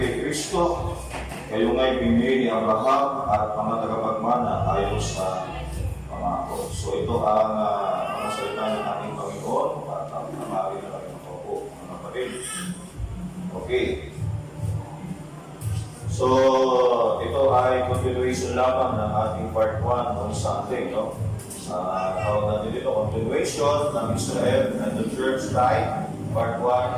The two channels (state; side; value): identical; both; correlation 1.00